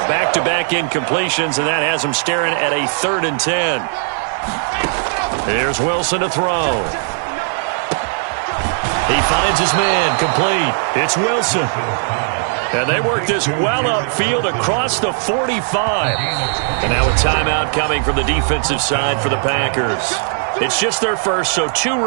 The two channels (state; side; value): silent; left; 56 dB below the other